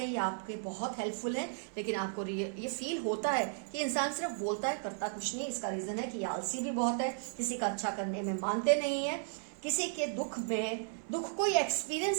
हैं ये आपके बहुत हेल्पफुल है, लेकिन आपको ये फील होता है कि इंसान सिर्फ बोलता है करता कुछ नहीं। इसका रीजन है कि आलसी भी बहुत है, किसी का अच्छा करने में मानते नहीं है, किसी के दुख को ये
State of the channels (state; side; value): silent; left; 55 dB below the other